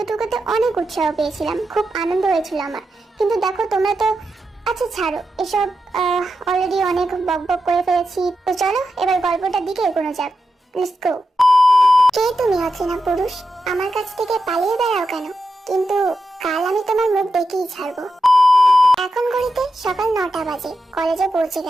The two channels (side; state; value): both; normal; correlation 0.88